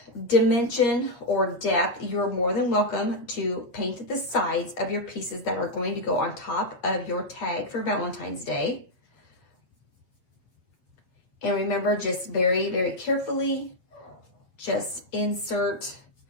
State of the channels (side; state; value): right; late; 8.4 ms